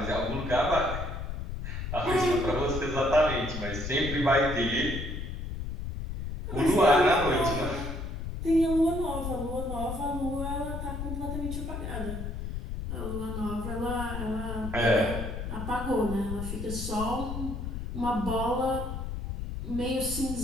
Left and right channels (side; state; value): left; noise; rumble, 5 dB below the sound